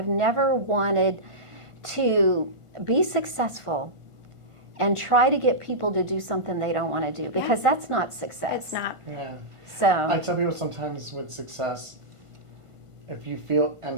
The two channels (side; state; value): left; late; 1.5 ms